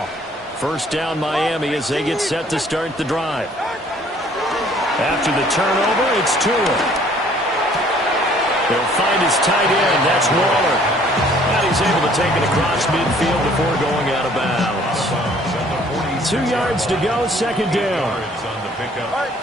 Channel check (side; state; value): both; normal; correlation 0.58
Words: First down Miami as they get set to start the drive. After the turnover, it's Tua. He'll find his tight end. That's Waller. And he's able to take it across midfield before going out of bounds. 2 yards to go, second down. On the pickup